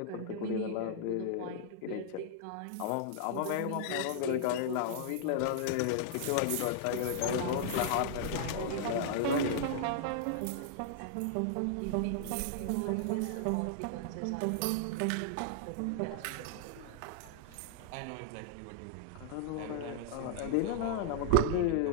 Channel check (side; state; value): both; different; correlation -0.01